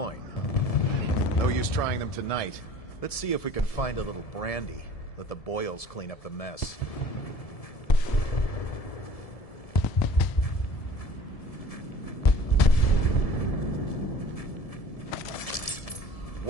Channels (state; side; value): late; right; 1.7 ms